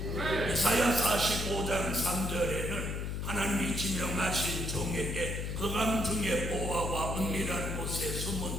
이사야 45장 3절에는 하나님이 지명하신 종에게 거감 중에 보화와 은밀한 곳에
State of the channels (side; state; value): left; noise; hum, 3 dB below the sound